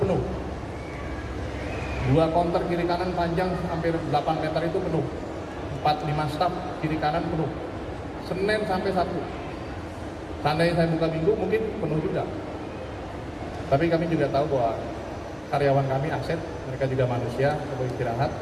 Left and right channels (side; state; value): both; identical; correlation 1.00